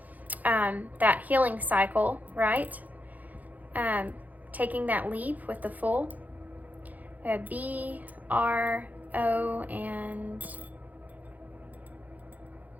that healing cycle, right? Taking that leap with the full. We have B-R-J-A-N. O and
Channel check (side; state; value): left; late; 0.080 ms